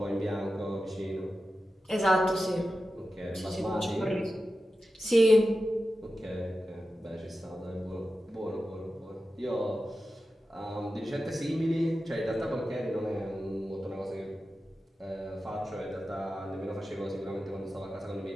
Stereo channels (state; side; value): normal; both; correlation 0.93